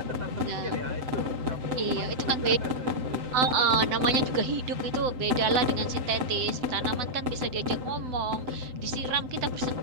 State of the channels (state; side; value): late; left; 7.8 ms